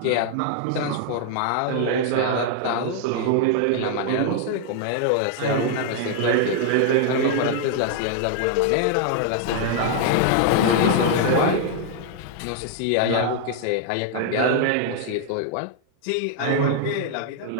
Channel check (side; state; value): both; different; correlation 0.00